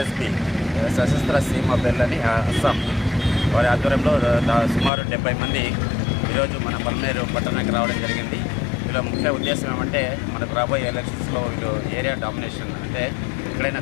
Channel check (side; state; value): right; drops out; at 4.9 s